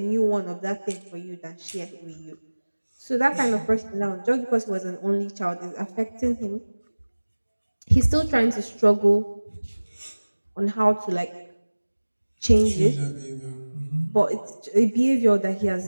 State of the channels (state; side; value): inverted; both; correlation -1.00